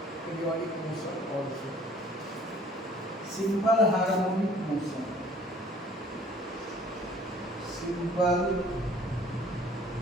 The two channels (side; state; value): both; normal; correlation 0.54